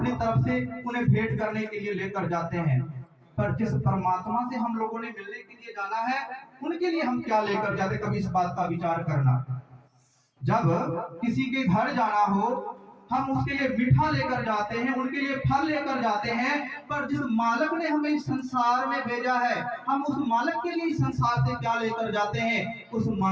तरफ से उन्हें भेंट करने के लिए लेकर जाते हैं। पर जिस परमात्मा से हम लोगों ने मिलने के लिए जाना है, उनके लिए हम क्या लेकर जाते, कभी इस बात का विचार करना। जब किसी के घर जाना हो, हम उसके लिए मीठा लेकर जाते हैं, उनके लिए फल लेकर जाते हैं। पर जिस मालिक ने हमें इस संसार में भेजा है, हम उस मालिक के लिए इस संसार से क्या लेकर जाते हैं, उस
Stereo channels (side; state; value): both; identical; correlation 1.00